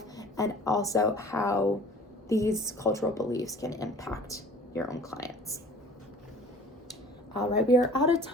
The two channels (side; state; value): both; normal; correlation 0.47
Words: and also how these cultural beliefs can impact your own clients. All right, we are out of